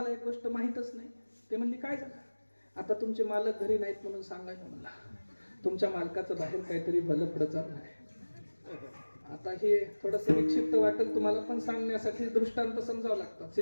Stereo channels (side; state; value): both; inverted; correlation -1.00